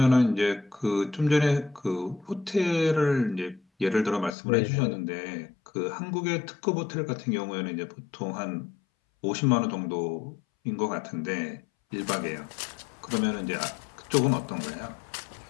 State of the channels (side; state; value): right; drops out; at 4.4 s